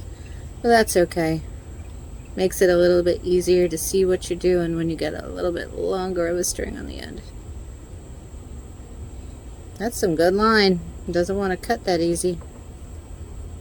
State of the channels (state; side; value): identical; both; correlation 1.00